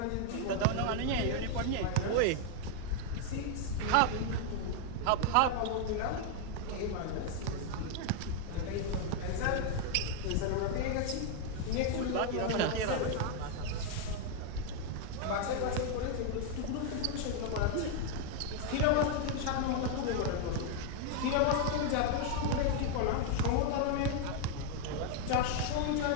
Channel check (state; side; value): different; both; correlation 0.00